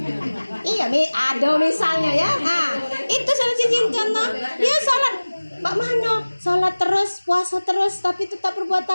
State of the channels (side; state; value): both; inverted; correlation -1.00